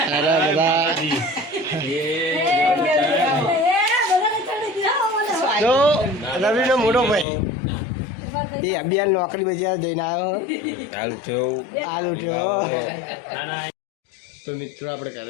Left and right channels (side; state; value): right; drops out; at 7.2 s